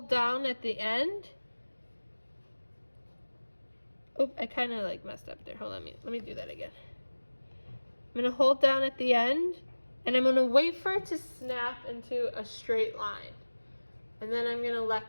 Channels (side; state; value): both; inverted; correlation -1.00